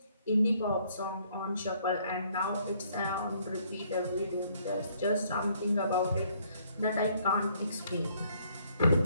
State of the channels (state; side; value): inverted; both; correlation -0.65